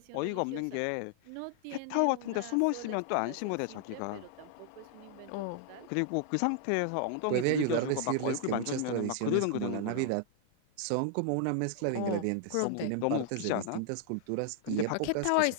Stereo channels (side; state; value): both; different; correlation 0.00